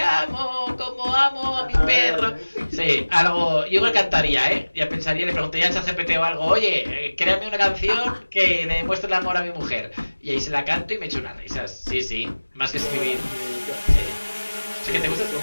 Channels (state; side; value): inverted; both; correlation -1.00